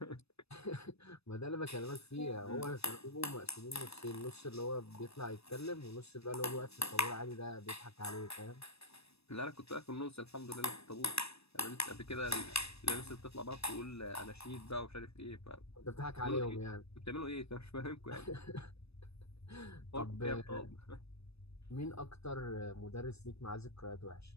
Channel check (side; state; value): right; late; 0.79 ms